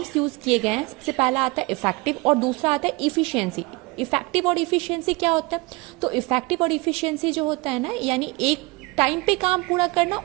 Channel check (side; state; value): left; quieter; 25.1 dB